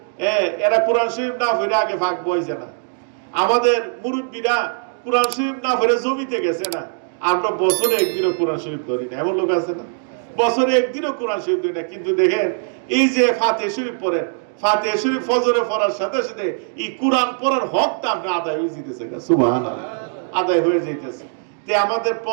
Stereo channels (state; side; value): silent; left; digital silence